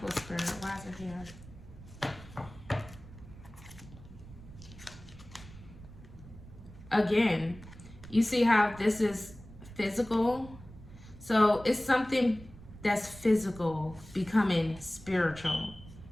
spirit? Why is it here? Again, you see how this is physical? So it's something that's physical becoming spiritual,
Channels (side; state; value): right; noise; rumble, 17 dB below the sound